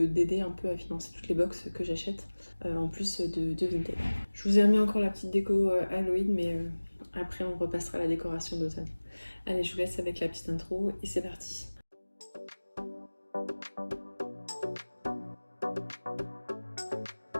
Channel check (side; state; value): both; inverted; correlation -1.00